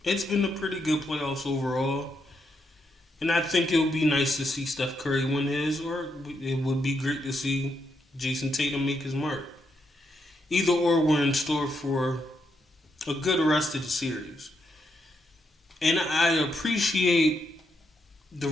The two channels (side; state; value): both; normal; correlation 0.80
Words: It's been a pretty good playoffs overall. And I think it would be nice to see Steph Curry win his, or it would be great to see Jason Tatum make his mark. Either or, we're in store for a good rest of the series. And I appreciate the